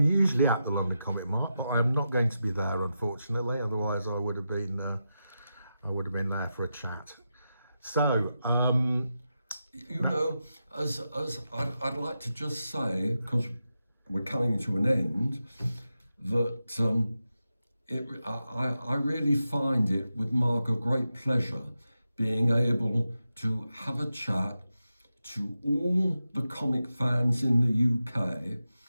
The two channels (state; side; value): inverted; both; correlation -0.89